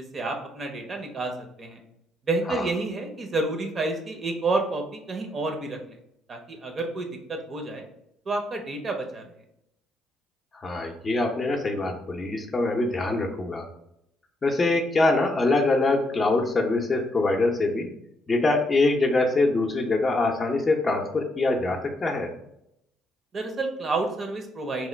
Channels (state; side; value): normal; both; correlation 0.77